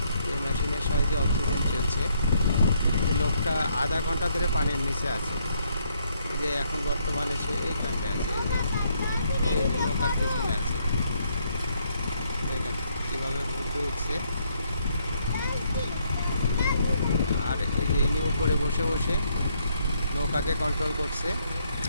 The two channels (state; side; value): inverted; both; correlation -0.72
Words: এই মেশিনের সাহায্যে অক্সিজেন চলছে। লোকটা আধা ঘন্টা ধরে পানির নিচে আছে। এই যে এখন বর্তমানে সে এইখানটায় আছে, এই যে নৌকার পেছনে আছে। দেখেন কীভাবে ঘুরতে উঠছে। আর এই যে ইনি উপরে বসে বসে নৌকাকে কন্ট্রোল করছে,